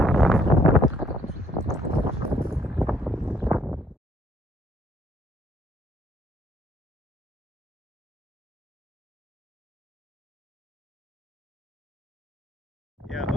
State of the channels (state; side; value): normal; both; correlation 0.66